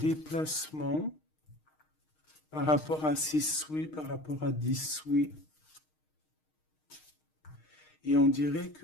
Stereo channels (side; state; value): right; late; 6.5 ms